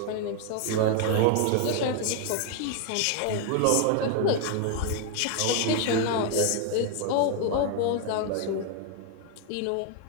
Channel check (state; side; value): different; both; correlation 0.00